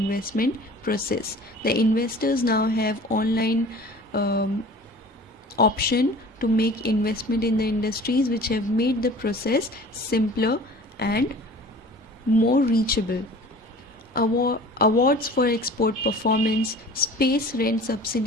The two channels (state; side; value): normal; both; correlation 0.44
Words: process. The investors now have online option to make investment in the industries, which have made the process simpler and more reachable. Awards for export performance. Space rent